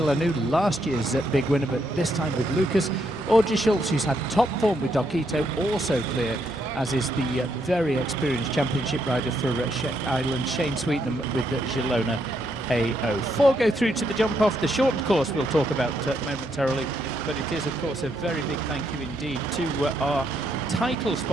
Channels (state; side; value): normal; both; correlation 0.76